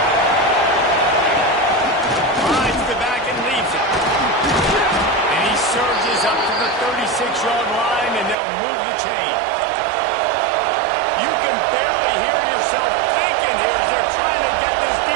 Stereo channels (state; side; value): drops out; left; at 8.3 s